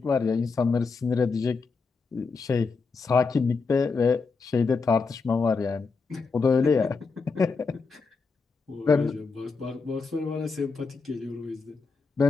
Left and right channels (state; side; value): quieter; right; 4.6 dB